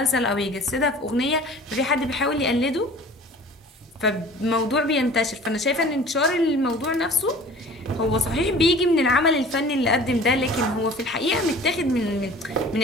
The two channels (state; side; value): normal; both; correlation 0.45